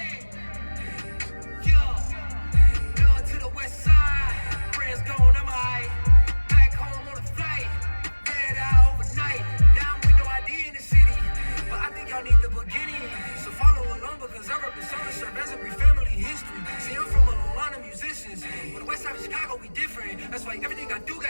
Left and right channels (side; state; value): both; inverted; correlation -1.00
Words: Love to the west side. Friends gone, I'm high. Back home on a flight. Red eye overnight. Now I'm with no ID in the city. But I think y'all need the beginning. So follow along because I represent a serve as a brief family history. See, I'm from a line of musicians. But the west side of Chicago, we different. That's why everything I do